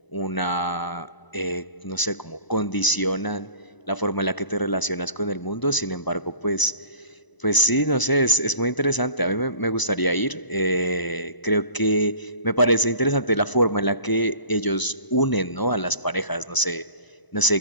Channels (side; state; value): right; late; 1.0 ms